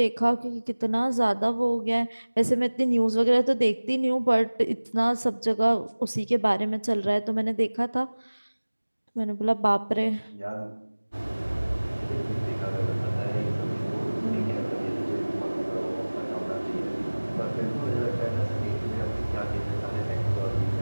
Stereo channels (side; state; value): both; inverted; correlation -1.00